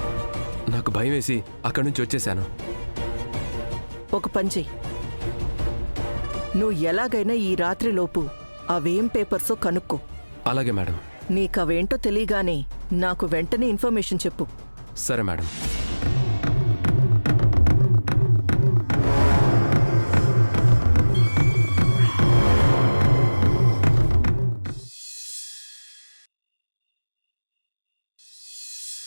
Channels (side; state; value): both; inverted; correlation -1.00